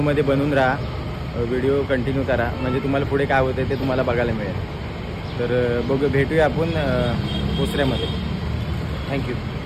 बनवून राहा, व्हिडिओ कंटिन्यू करा, म्हणजे तुम्हाला पुढे काय होतं ते तुम्हाला बघायला मिळेल. तर भेटूया आपण पोसऱ्यामध्ये. Thank you.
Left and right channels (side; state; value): both; identical; correlation 1.00